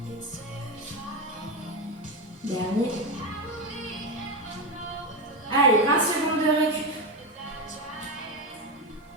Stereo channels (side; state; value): both; normal; correlation 0.13